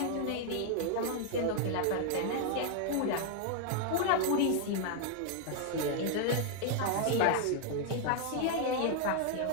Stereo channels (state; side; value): different; both; correlation 0.00